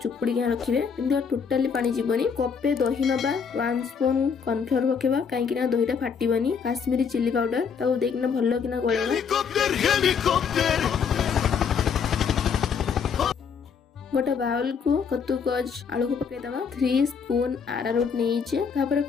किना रखिबे। किंतु टोटली पानी जीवनी। कपे दही नबा, 1 स्पून कॉर्नफ्लोर पकेबा काई किना दहीटा फाटिबनी। काश्मीरी चिली पाउडर ताको देखिना भलो किना गळेबा। गोटे बाउल को कद्दूकस आलू को पकाई दबा। 3 स्पून आरारोट नीचे तापर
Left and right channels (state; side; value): quieter; right; 6.4 dB